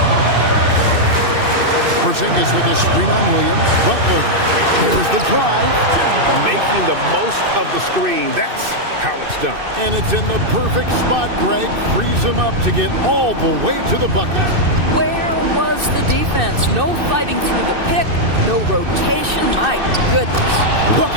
Porzingis with a screen on Williams. Butler. Here's the drive. Making the most of the screen. That's how it's done. And it's in the perfect spot, Greg. Frees him up to get all the way to the bucket. Where was the defense? No fighting through the pick, no rotation. My goodness.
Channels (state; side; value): late; left; 2.6 ms